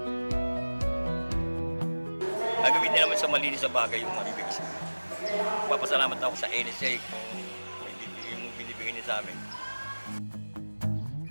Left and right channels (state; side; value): inverted; both; correlation -1.00